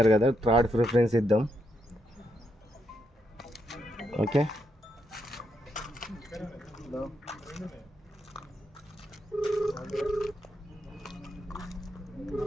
కదా, థర్డ్ ప్రిఫరెన్స్ ఇద్దాం. ఓకే,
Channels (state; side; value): normal; both; correlation 0.80